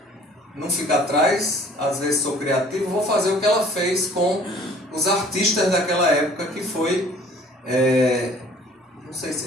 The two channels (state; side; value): normal; both; correlation 0.53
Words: não fico atrás, às vezes sou criativo, vou fazer o que ela fez com os artistas daquela época, que foi... não sei